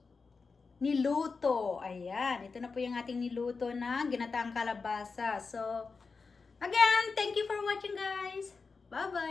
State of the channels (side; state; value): right; quieter; 4.6 dB